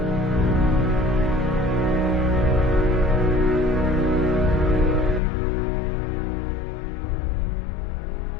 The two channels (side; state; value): right; drops out; at 5.2 s